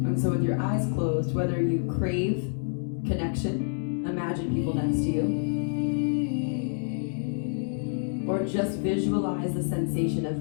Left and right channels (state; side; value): silent; right; digital silence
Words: And so with your eyes closed, whether you crave connection, imagine people next to you, or just visualize the sensation